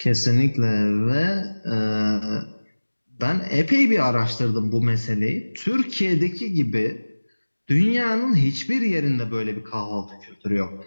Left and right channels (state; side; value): inverted; both; correlation -1.00